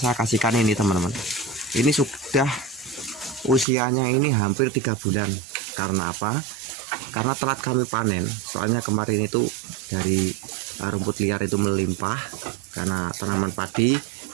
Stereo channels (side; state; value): left; drops out; at 3.7 s